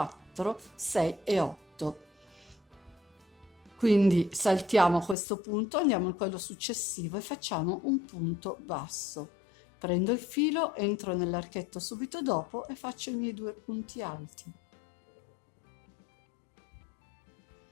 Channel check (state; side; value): drops out; right; at 5.2 s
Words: 6 e 8. Quindi saltiamo questo punto, andiamo in quello successivo e facciamo un punto basso. Prendo il filo, entro nell'archetto subito dopo e faccio i miei 2 punti alti.